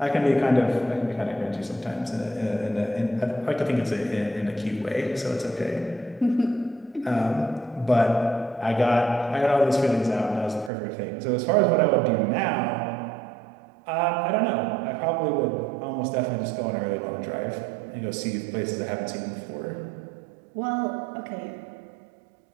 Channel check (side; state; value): left; drops out; at 10.7 s